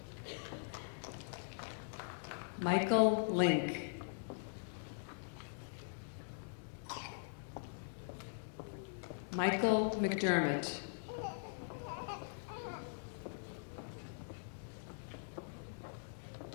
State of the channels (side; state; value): right; silent; digital silence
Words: Michael Link. Michael McDermott.